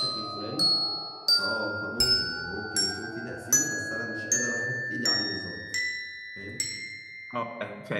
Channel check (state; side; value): identical; both; correlation 1.00